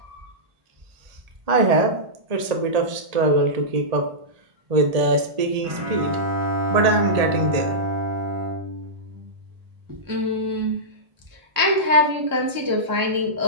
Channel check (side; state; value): left; late; 1.8 ms